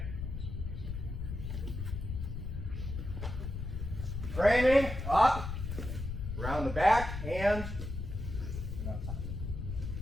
Framing, up, around the back, hand, and on top.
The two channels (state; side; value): noise; left; rumble, 5 dB below the sound